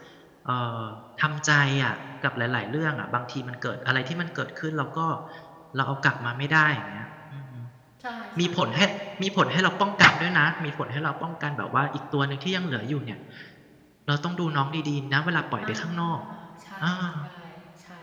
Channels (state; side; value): identical; both; correlation 1.00